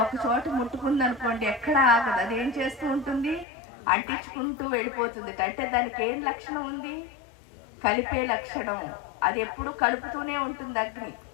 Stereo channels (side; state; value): right; drops out; at 3.5 s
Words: ఒక చోట ముట్టుకుంది అనుకోండి ఎక్కడ ఆగదు, అది ఏం చేస్తూ ఉంటుంది, అంటించుకుంటూ వెళ్ళిపోతుంది. అంటే దానికి ఏం లక్షణం ఉంది, కలిపే లక్షణం. అది ఎప్పుడు కలుపుతూనే ఉంటుంది అగ్ని.